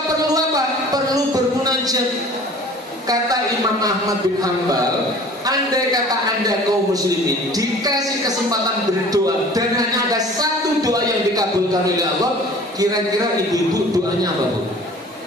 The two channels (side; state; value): both; normal; correlation 0.46